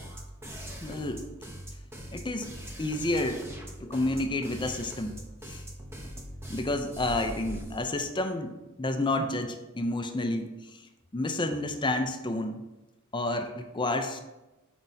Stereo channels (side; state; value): both; normal; correlation 0.47